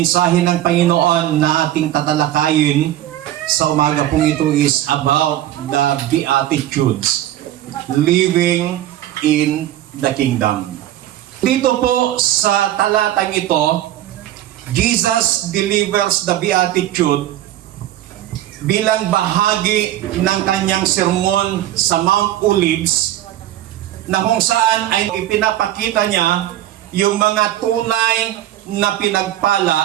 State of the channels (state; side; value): quieter; left; 13.3 dB